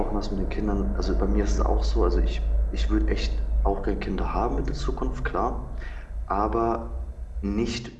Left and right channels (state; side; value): identical; both; correlation 1.00